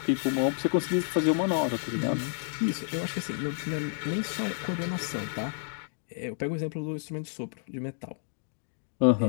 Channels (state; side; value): silent; right; digital silence